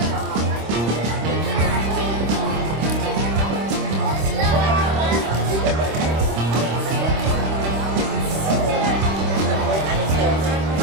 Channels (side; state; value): left; late; 26 ms